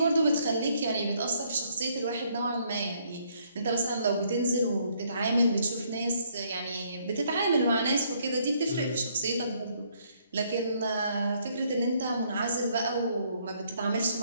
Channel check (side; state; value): both; inverted; correlation -0.68